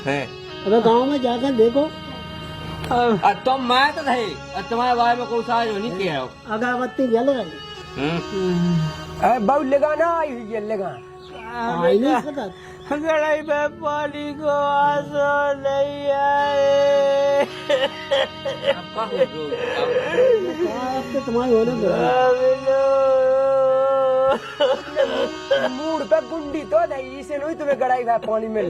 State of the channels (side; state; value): both; identical; correlation 1.00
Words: हैं? अबे गाँव में जाकर देखो और तुम मैं तो थे और तुम्हारे बारे में कोई साज नहीं किया हो अगरबत्ती जल रही, बहु लगाना आई हुई है लगा आई नहीं सकता। गड़ाई पे पानी को आंसू नहीं आए। अब का हो जो अब तो तुम्हारे होने दो। मूड पे गुंडी तो नहीं इसे नहीं तुम्हें गड़ाई हुआ पानी मिल